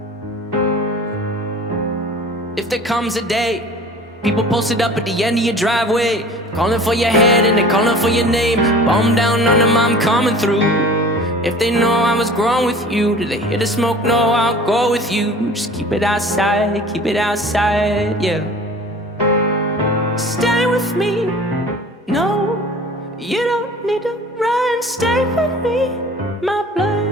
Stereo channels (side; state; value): both; normal; correlation 0.44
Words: If there comes a day, people posted up at the end of your driveway, calling for your head and they're calling for your name. Bomb down on them, I'm coming through. If they know I was growing with you, do they hear the smoke? No, I'll go with you. Just keep it outside, yeah. Stay with me, no, you don't need to run. Stay with me, my